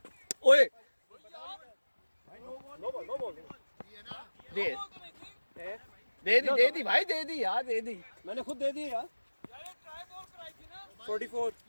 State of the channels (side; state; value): both; inverted; correlation -1.00